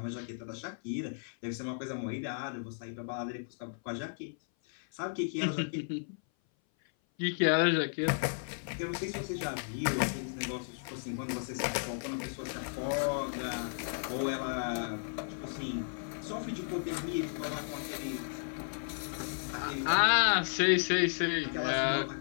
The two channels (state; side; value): silent; right; 55 dB below the other